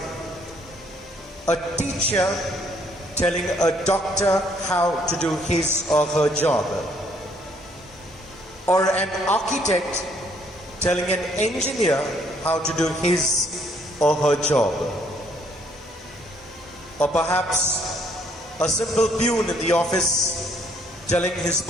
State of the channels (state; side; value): normal; both; correlation 0.65